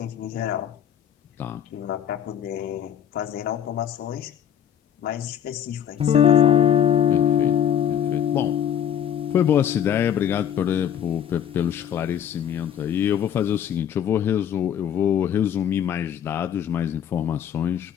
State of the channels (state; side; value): quieter; right; 9.4 dB